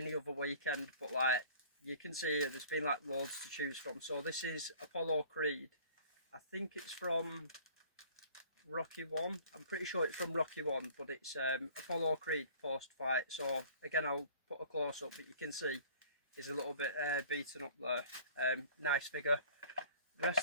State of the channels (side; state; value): both; inverted; correlation -0.49